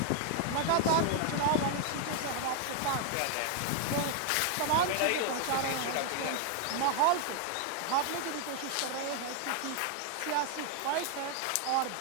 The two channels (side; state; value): both; different; correlation 0.00